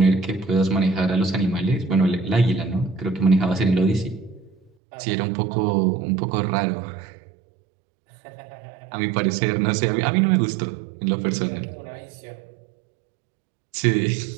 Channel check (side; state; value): left; drops out; at 4.7 s